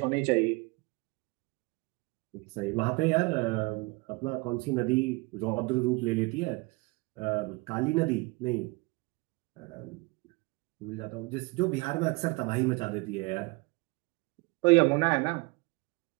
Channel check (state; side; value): quieter; left; 26.2 dB